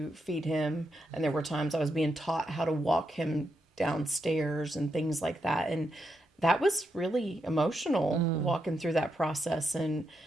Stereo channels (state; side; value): normal; both; correlation 0.83